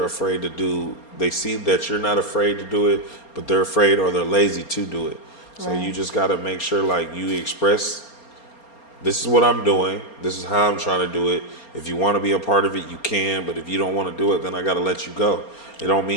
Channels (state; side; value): late; right; 4.3 ms